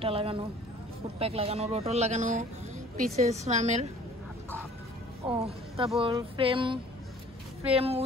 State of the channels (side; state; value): both; normal; correlation 0.51